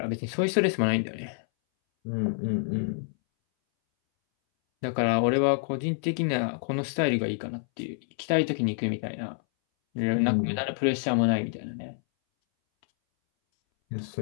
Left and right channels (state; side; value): silent; right; 60 dB below the other